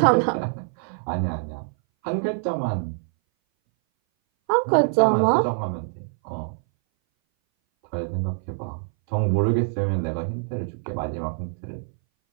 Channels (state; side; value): silent; left; 59 dB below the other